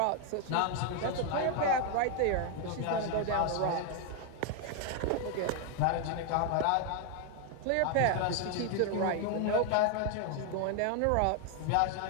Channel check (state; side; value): different; both; correlation 0.00